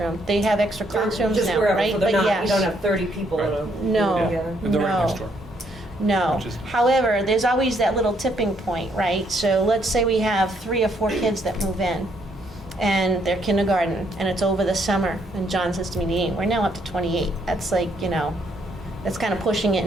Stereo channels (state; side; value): normal; both; correlation 0.71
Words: They have extra classrooms Just now, wherever, right? so they're But not, yes. you don't have 30 people in a No. room together? And they're right No. next door. No. Which is- However, there's always that little tipping point, right? So let's say we have 3 or 4 kids that move in, and they're kindergarten, and it's over the summer, and John says to me, we're now up to 28. That's like, that's kind of pushing it